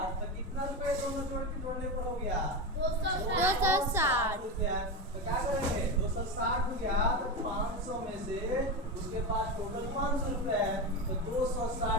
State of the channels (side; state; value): both; normal; correlation 0.17